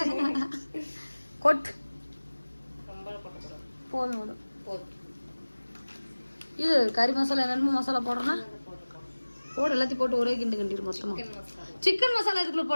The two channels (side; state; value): both; inverted; correlation -1.00